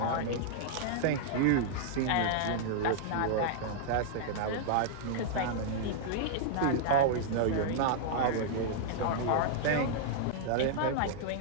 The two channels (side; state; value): both; different; correlation -0.01